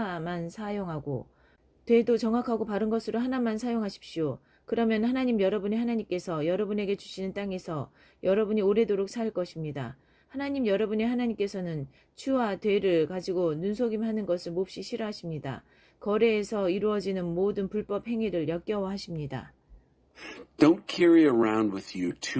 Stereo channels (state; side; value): identical; both; correlation 1.00